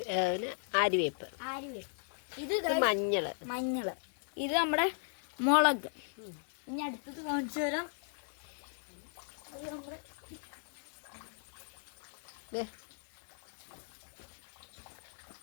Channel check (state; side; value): silent; right; digital silence